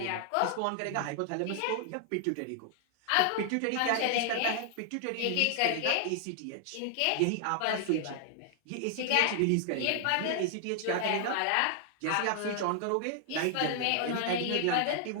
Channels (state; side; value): different; both; correlation 0.00